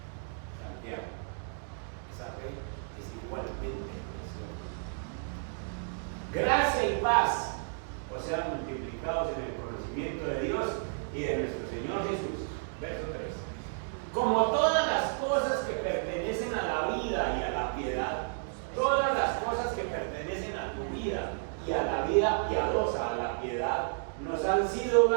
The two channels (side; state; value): left; silent; digital silence